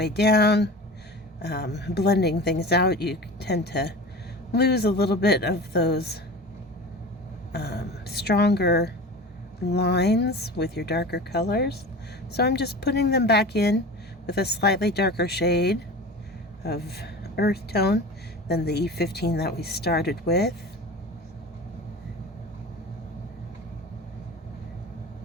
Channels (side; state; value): both; normal; correlation 0.34